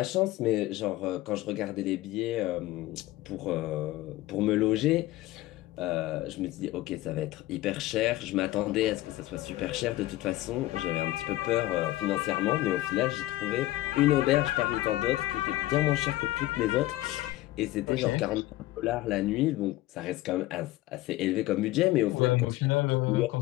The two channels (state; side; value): quieter; right; 16.9 dB